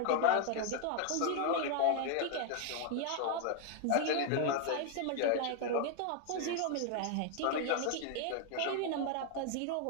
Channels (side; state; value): both; different; correlation 0.01